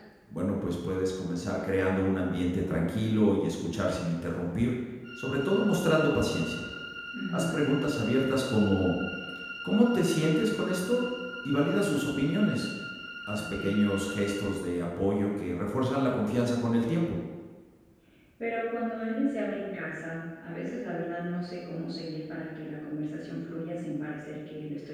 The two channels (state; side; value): identical; both; correlation 1.00